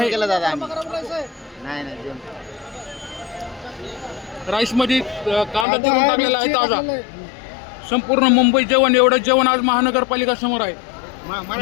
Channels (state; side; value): drops out; right; at 5.7 s